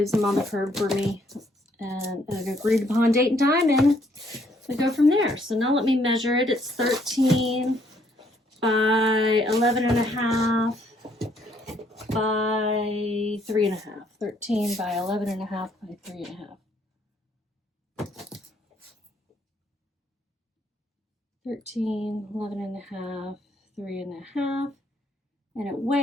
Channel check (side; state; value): both; normal; correlation 0.68